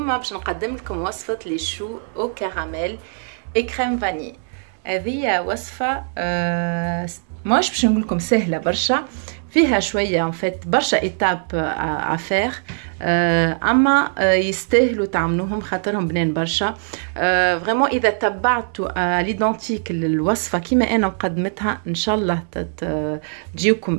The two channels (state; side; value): silent; left; 65 dB below the other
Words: باش نقدم لكم وصفة لي شو او كراميل كريم فاني. هذه وصفة ماش باش نقول لكم سهلة برشا، فيها شوية برشا ايتاب افير، اما يستاهلوا تعملوهم خاطرهم بنان برشا. فريمون اذا تبعتوا ليدونتيك الوصفة كيما انا مقدمتها ان شاء الله